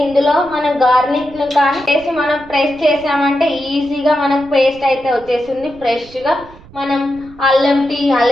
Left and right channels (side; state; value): right; noise; rumble, 22 dB below the sound